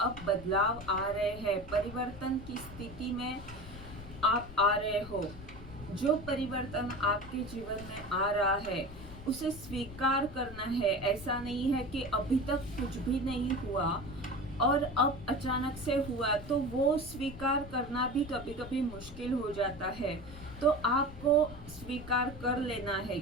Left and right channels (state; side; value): noise; left; rumble, 14 dB below the sound